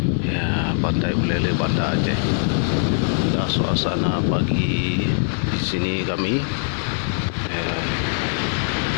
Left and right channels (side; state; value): right; silent; digital silence